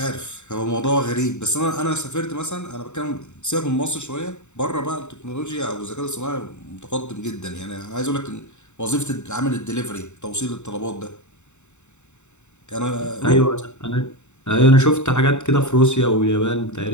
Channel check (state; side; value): late; right; 0.83 ms